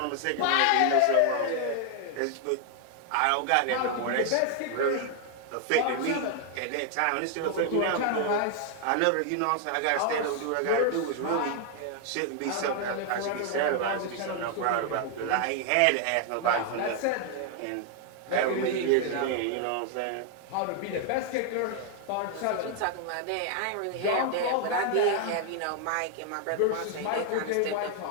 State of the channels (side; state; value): both; different; correlation 0.00